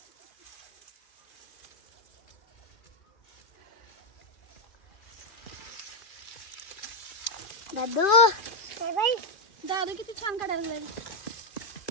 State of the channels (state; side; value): late; right; 2.5 ms